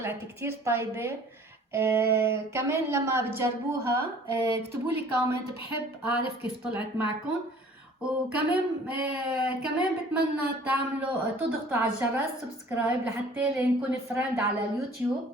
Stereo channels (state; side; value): normal; both; correlation 0.51